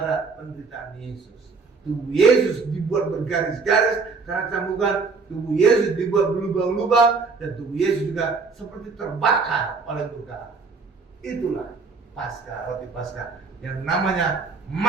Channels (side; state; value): left; quieter; 4.5 dB